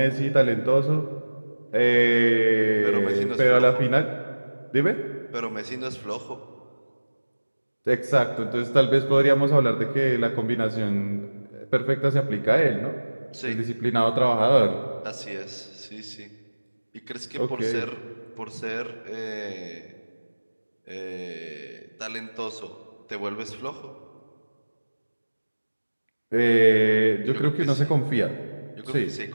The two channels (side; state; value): both; inverted; correlation -1.00